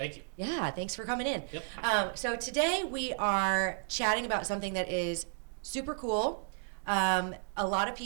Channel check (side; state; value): left; silent; digital silence